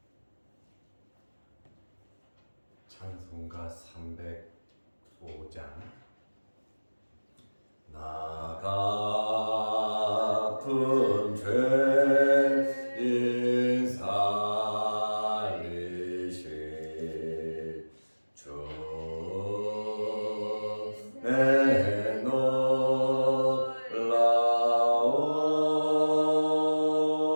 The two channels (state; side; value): inverted; both; correlation -1.00